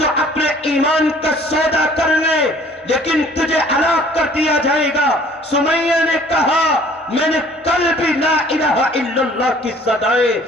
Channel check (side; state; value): both; normal; correlation 0.54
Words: اپنے ایمان کا سودا کر لے لیکن تجھے ہلاک کر دیا جائے گا. سمیہ نے کہا میں نے کل بھی لا الہ الا اللہ کی صدائیں